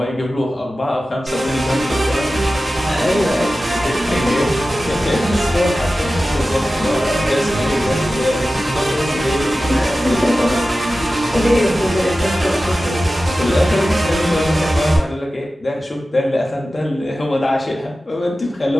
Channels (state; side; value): normal; both; correlation 0.95